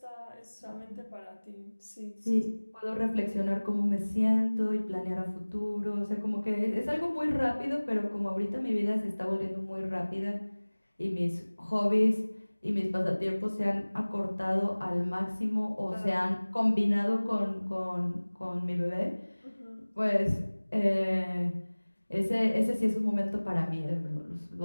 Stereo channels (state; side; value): inverted; both; correlation -1.00